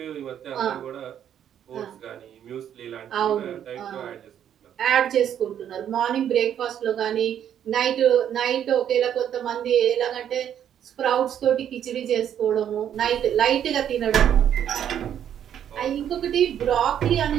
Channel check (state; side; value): quieter; left; 9.7 dB